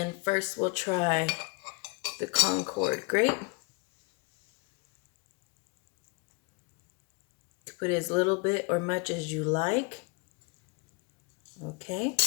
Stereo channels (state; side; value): quieter; right; 28.6 dB